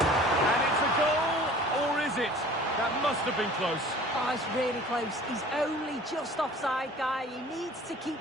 And it's a goal, or is it? That must have been close. Oh, it's really close. He's only just offside, guy. He needs to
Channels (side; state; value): both; normal; correlation 0.46